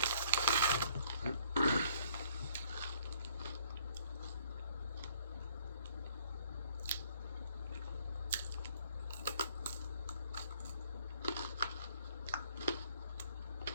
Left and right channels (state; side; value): inverted; both; correlation -0.62